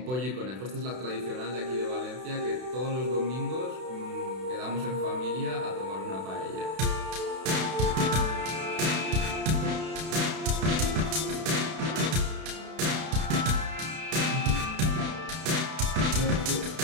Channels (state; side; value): late; left; 32 ms